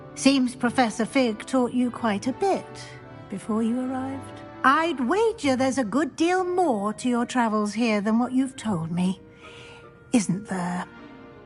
Seems Professor Fig taught you quite a bit before you arrived. I'd wager there's a good deal more to your travels here than what you've told me. Isn't there?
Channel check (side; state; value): both; identical; correlation 1.00